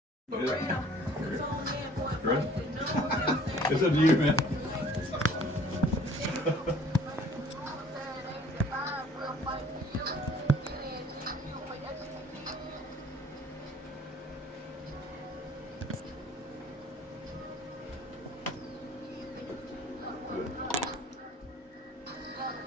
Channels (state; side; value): normal; both; correlation 0.54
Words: Yeah. Ready? It's up to you, man.